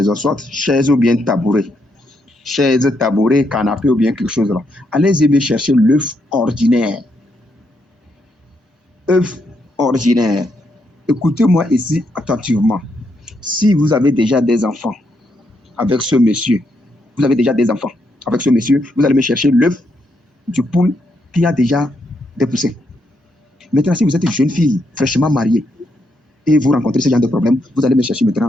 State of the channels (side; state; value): both; normal; correlation 0.78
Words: soit chaise ou bien tabouret, chaise, tabouret, canapé ou bien quelque chose là, allez-y bien chercher l'œuf ordinaire. œuf ordinaire. Écoutez-moi ici attentivement. Si vous avez déjà des enfants avec ce monsieur, vous allez me chercher l'œuf du poule qui a déjà des poussins. Maintenant, si vous êtes une jeune fille fraîchement mariée et vous rencontrez ce genre de problème, vous allez me chercher